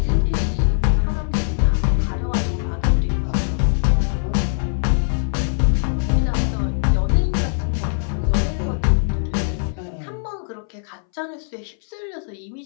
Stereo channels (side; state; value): right; silent; 63 dB below the other